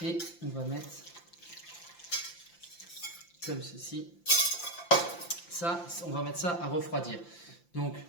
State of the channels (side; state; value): right; late; 5.8 ms